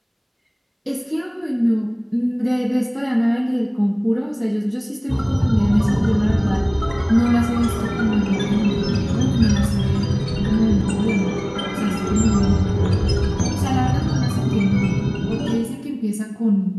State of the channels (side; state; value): both; identical; correlation 1.00